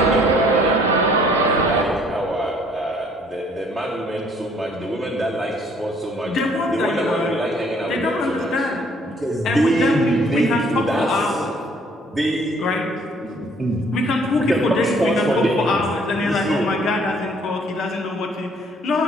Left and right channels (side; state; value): both; normal; correlation 0.61